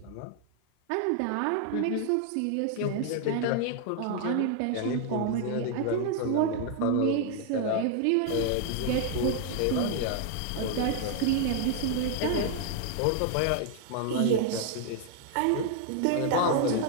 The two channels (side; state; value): both; different; correlation 0.00